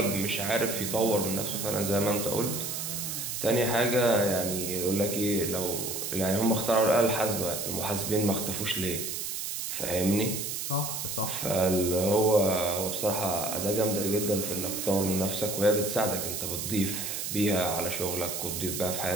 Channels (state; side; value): noise; right; hiss, 4 dB below the sound